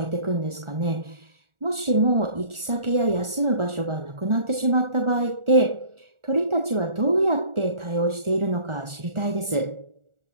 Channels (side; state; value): left; late; 1.4 ms